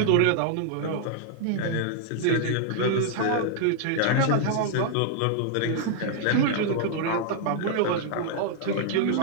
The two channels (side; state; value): both; different; correlation -0.01